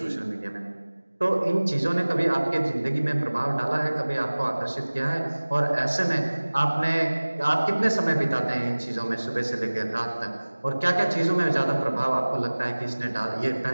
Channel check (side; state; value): both; inverted; correlation -1.00